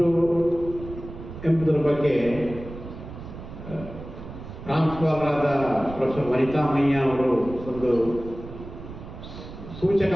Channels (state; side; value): noise; right; rumble, 12 dB below the sound